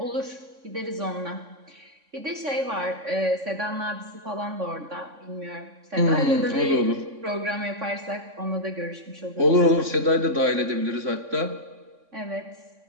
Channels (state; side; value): late; left; 3.6 ms